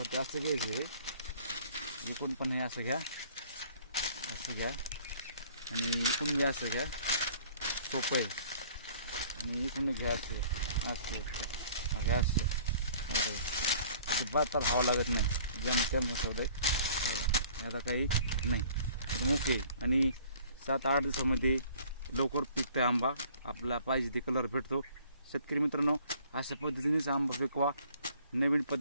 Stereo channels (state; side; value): inverted; both; correlation -0.53